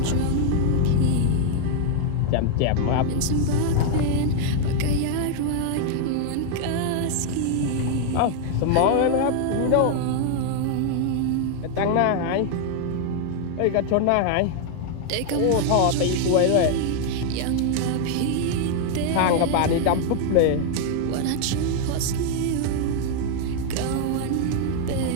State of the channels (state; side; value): different; both; correlation 0.00